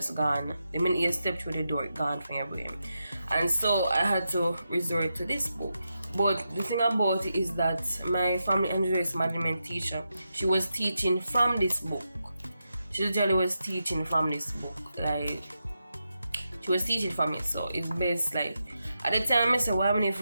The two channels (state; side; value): inverted; both; correlation -0.87